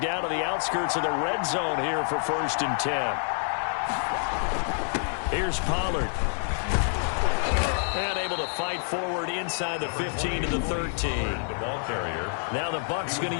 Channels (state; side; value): silent; right; 59 dB below the other